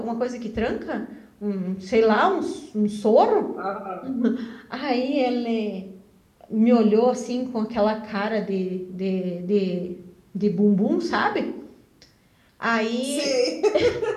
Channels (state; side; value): identical; both; correlation 1.00